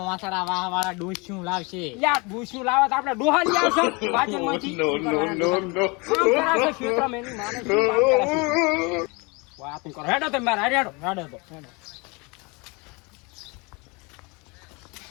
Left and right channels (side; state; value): right; quieter; 28.3 dB